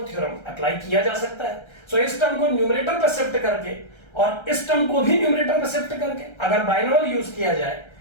थ्योरम अप्लाई किया जा सकता है। सो इस टर्म को न्यूमरेटर पर शिफ्ट करके और इस टर्म को भी न्यूमरेटर पर शिफ्ट करके अगर बाइनोमियल यूज किया जाए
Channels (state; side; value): late; right; 1.3 ms